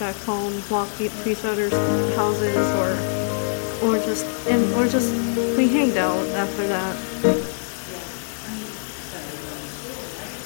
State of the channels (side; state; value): right; silent; digital silence